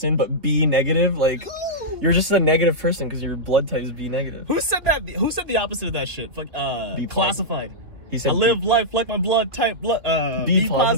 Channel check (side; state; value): left; late; 2.8 ms